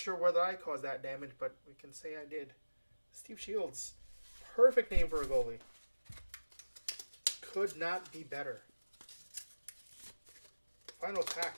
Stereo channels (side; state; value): both; inverted; correlation -1.00